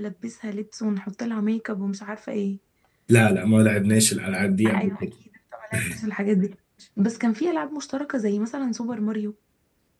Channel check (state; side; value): identical; both; correlation 1.00